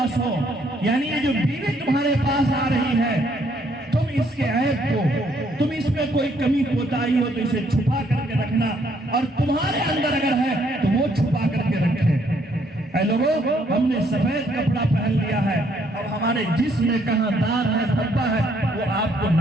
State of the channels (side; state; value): both; normal; correlation 0.68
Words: ہو، یعنی یہ جو بیوی تمہارے پاس آ رہی ہے، تم اس کے عیب کو، تم اس میں کوئی کمی کوتاہی ہو تو اسے چھپا کر کے رکھنا، اور تمہارے اندر اگر ہے تو وہ چھپا کر کے رکھے۔ اے لوگوں، ہم نے سفید کپڑا پہن لیا ہے، اب ہمارے جسم میں کہاں داغ ہے، دھبا ہے، وہ آپ کو